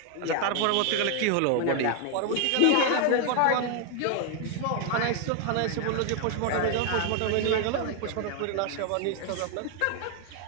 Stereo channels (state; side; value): different; both; correlation 0.00